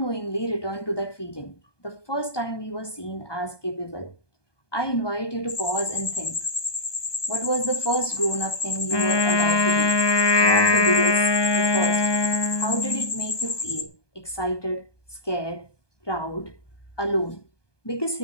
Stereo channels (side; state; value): right; late; 1.2 ms